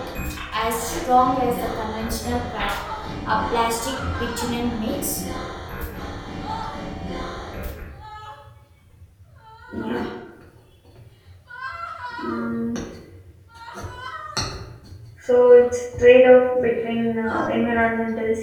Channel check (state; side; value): identical; both; correlation 1.00